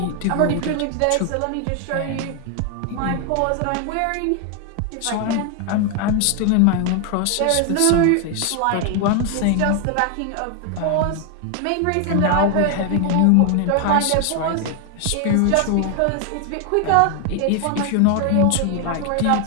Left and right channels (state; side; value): different; both; correlation 0.01